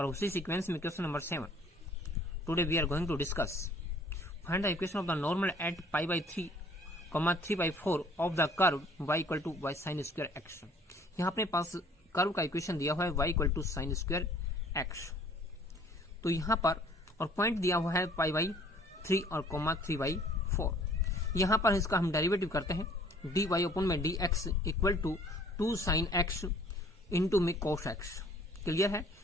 उसी सीक्वेंस में question number 7 today we are going to discuss find the equation of the normal at pi by 3, 3/4 of the curve y equal to y sine square x। यहाँ अपने पास कर्व का इक्वेशन दिया हुआ है y equal to sine square x। तो यहाँ पर और पॉइंट दिया हुआ है पाई बाई 3 और 3/4। यहाँ पर इसका हम डेरिवेटिव करते हैं dy अपॉन में dx equal to 2 sine x into में cos x। क्लियर है।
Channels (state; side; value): normal; both; correlation 0.55